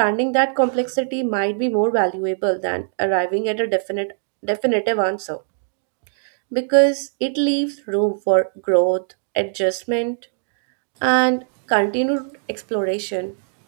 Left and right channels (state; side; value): silent; left; digital silence